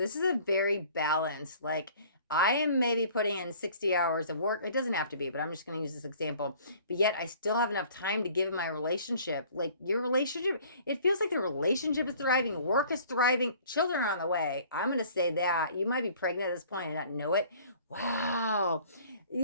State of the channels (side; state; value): both; inverted; correlation -0.52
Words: this is a very balanced, like, I am maybe putting in 60 hours of work. It doesn't have to be, but I'm just going to use this example. But yet I still have enough time to give my relationship. Like your relationship, it feels like the relationship is thriving. Work is thriving. Children are on the way. I'm going to say that. You might be pregnant at this point and not know it. Wow.